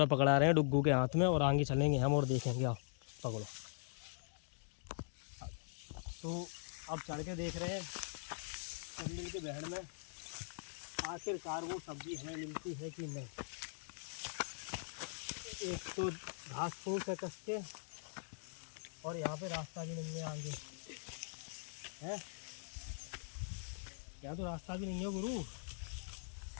पकड़ा रहे हैं डुग्गू के हाथ में और आगे चलेंगे हम और देखेंगे। आओ पकड़ो। तो अब चढ़ के देख रहे हैं चंबल के बहड़ में आखिरकार वो सब्जी हमें मिलती है कि नहीं। एक तो घास फूस है कस के, और यहाँ पे रास्ता भी नहीं है आगे है। यहाँ तो रास्ता भी नहीं है गुरु,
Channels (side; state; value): right; silent; digital silence